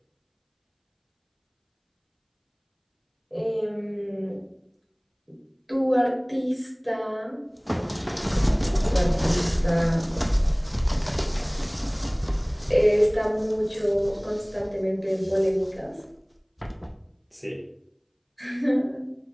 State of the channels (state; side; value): identical; both; correlation 1.00